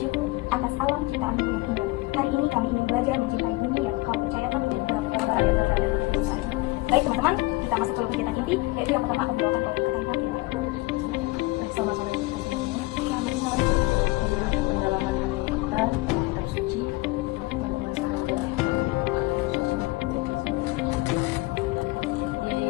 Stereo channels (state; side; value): quieter; right; 21.9 dB